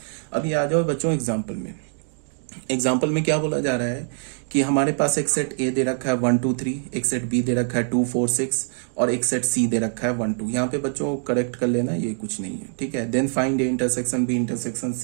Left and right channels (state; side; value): silent; left; 56 dB below the other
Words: अभी आ जाओ बच्चों एग्जाम्पल में। एग्जाम्पल में क्या बोला जा रहा है कि हमारे पास एक सेट A दे रखा है 1 2 3, एक सेट B दे रखा है 2 4 6 और एक सेट C दे रखा है 1 2। यहाँ पे बच्चों करेक्ट कर लेना, ये कुछ नहीं है। ठीक है, then find A intersection B intersection